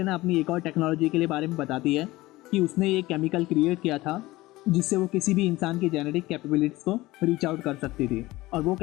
अपनी एक और टेक्नोलॉजी के लिए बारे में बताती है कि उसने ये केमिकल क्रिएट किया था जिससे वो किसी भी इंसान की जेनेटिक कैपेबिलिटीज़ को रीच आउट कर सकती थी। और वो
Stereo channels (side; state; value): right; quieter; 19.0 dB